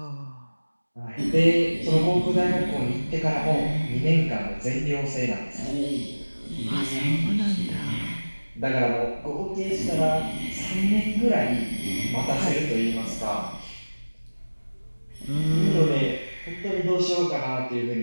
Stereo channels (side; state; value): both; inverted; correlation -1.00